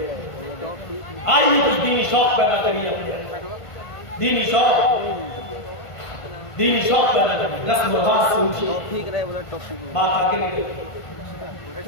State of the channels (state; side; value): late; right; 1.5 ms